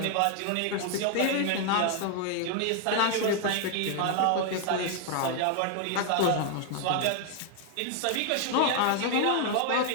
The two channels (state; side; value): different; both; correlation 0.00